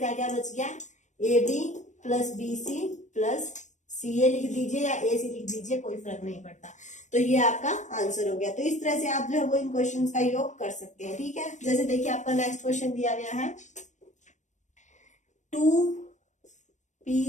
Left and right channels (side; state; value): right; late; 0.35 ms